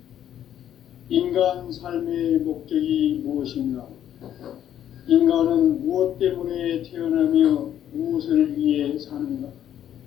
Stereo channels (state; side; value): quieter; right; 10.6 dB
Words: 인간 삶의 목적이 무엇인가? 인간은 무엇 때문에 태어나며 무엇을 위해 사는가?